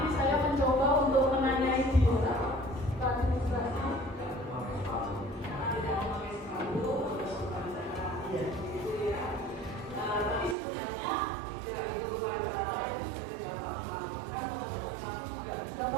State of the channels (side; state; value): left; drops out; at 10.6 s